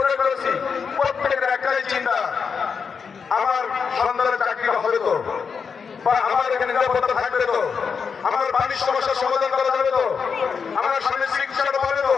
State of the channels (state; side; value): quieter; right; 5.9 dB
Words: করেছি। প্রত্যেকের একটাই চিন্তা, নিরাপত্তা থাকবে তো? আমার পানির সমস্যার সমাধান করা যাবে তো? আমার স্বামীর চিকিৎসাটা পাবে তো?